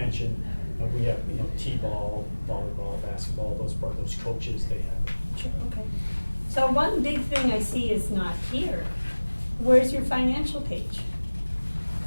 we have, T-ball, volleyball, basketball, those coaches, they have it. Sure, okay. So one big thing I see is not here. Where's your financial page?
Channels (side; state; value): both; inverted; correlation -1.00